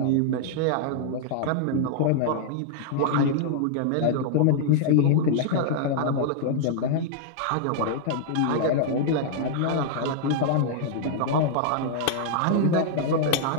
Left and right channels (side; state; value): both; different; correlation -0.01